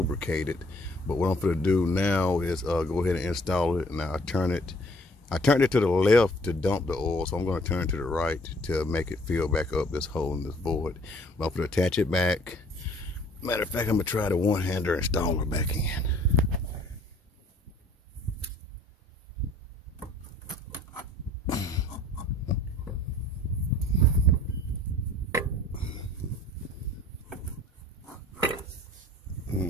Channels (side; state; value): both; normal; correlation 0.56